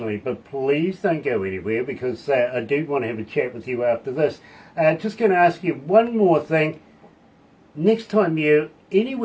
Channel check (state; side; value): identical; both; correlation 1.00